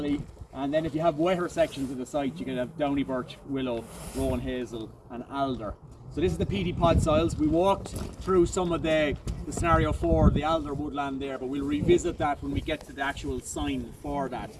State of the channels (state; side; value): identical; both; correlation 1.00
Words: And then if you have wetter sections of the site, you can have downy birch, willow, rowan hazel and alder. So this is the peaty pod soils. We walked through some of the scenario 4, the alder woodland there, but we'll revisit that when we get to the actual sign for that.